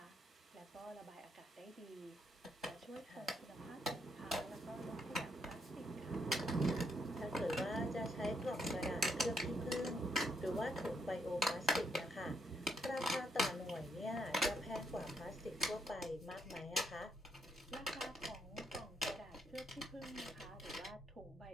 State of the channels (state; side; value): normal; both; correlation 0.76